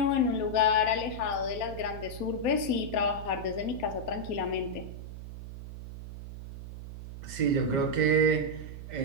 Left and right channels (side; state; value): right; noise; hum, 11 dB below the sound